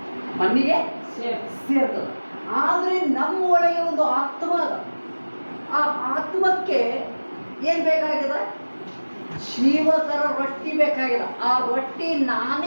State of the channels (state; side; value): inverted; both; correlation -1.00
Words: ಮಣ್ಣಿಗೆ ಸೇರ್ತದೆ. ಆದರೆ ನಮ್ಮ ಒಳಗೆ ಒಂದು ಆತ್ಮ ಅದ. ಆ ಆತ್ಮಕ್ಕೆ ಏನು ಬೇಕಾಗಿದೆ? ಜೀವಕರ ರೊಟ್ಟಿ ಬೇಕಾಗಿದೆ. ಆ ರೊಟ್ಟಿ